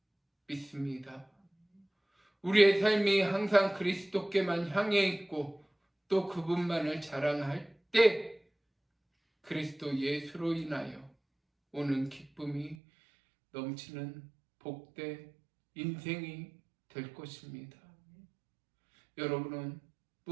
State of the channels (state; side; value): drops out; left; at 12.8 s